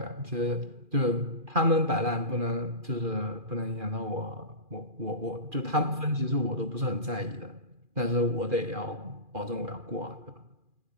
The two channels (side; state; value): left; late; 2.4 ms